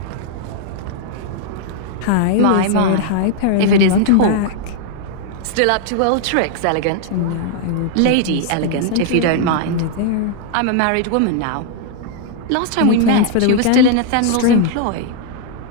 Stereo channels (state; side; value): different; both; correlation -0.01